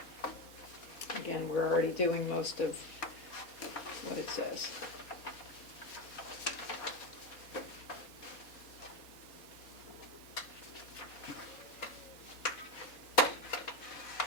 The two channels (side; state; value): right; late; 4.3 ms